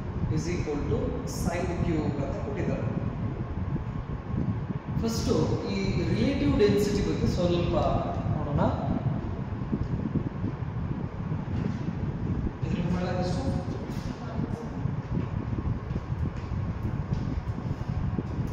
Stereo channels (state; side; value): identical; both; correlation 1.00